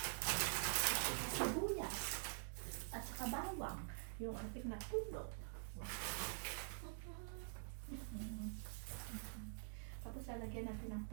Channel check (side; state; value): left; silent; digital silence